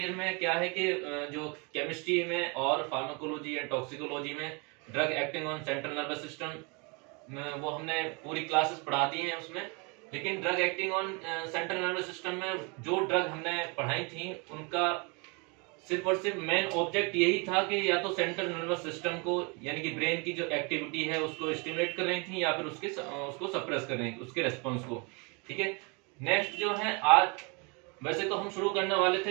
ईयर में क्या है कि जो केमिस्ट्री में और फार्माकोलॉजी एंड टॉक्सिकोलॉजी में drug acting on central nervous system वो हमने पूरी क्लासेस पढ़ा दी हैं उसमें। लेकिन drug acting on central nervous system में जो ड्रग हमने पढ़ाई थी उनका सिर्फ और सिर्फ मेन ऑब्जेक्ट यही था कि या तो सेंट्रल नर्वस सिस्टम को यानी कि ब्रेन की जो एक्टिविटी है उसको स्टिमुलेट कर रही थी या फिर उसको सप्रेस कर रही थी, उसके रेस्पॉन्स को। ठीक है, नेक्स्ट जो है आज वैसे तो हम शुरू करने वाले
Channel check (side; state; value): left; quieter; 31.4 dB